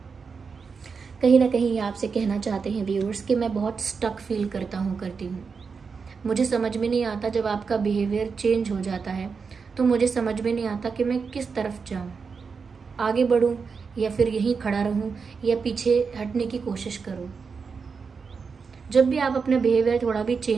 कहीं ना कहीं ये आपसे कहना चाहते हैं व्यूअर्स कि मैं बहुत स्टक फील करती हूँ। मुझे समझ में नहीं आता, जब आपका बिहेवियर चेंज हो जाता है तो मुझे समझ में नहीं आता कि मैं किस तरफ जाऊँ, आगे बढ़ूँ या फिर यहीं खड़ा रहूँ या पीछे हटने की कोशिश करूँ। जब भी आप अपना बिहेवियर थोड़ा भी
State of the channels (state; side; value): quieter; left; 5.4 dB